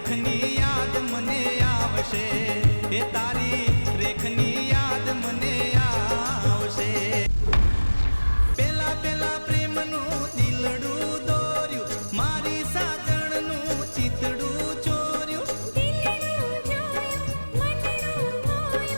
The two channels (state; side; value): inverted; both; correlation -1.00